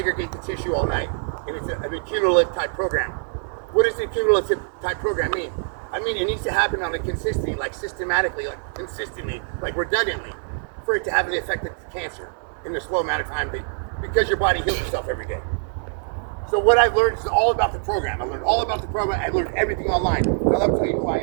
the tissue all night. And it's an accumulative type program. What does the accumulative type program mean? I mean, it needs to happen on a consistently, like systematically, like consistently, like redundantly, for it to have an effect of cancer in a slow amount of time, because your body heals itself every day. So what I've learned is all about the program. I learned all about the program. I learned everything online. Now let me tell you who I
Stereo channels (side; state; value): left; silent; digital silence